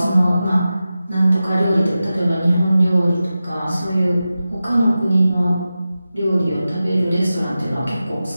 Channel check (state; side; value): inverted; both; correlation -0.93